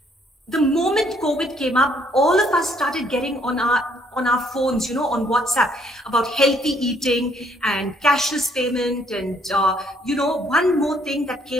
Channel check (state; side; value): normal; both; correlation 0.66